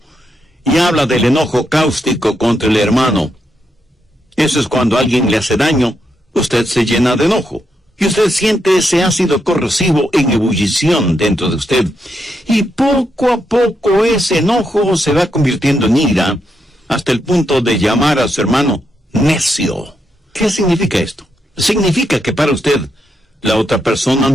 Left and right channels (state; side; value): normal; both; correlation 0.81